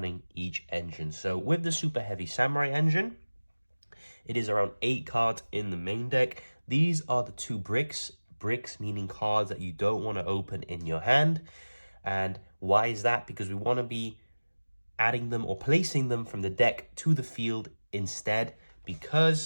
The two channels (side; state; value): both; inverted; correlation -1.00